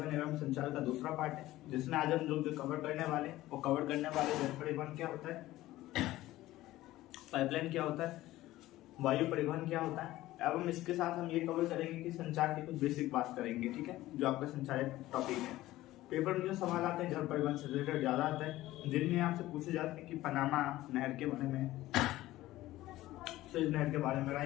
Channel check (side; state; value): right; quieter; 16.3 dB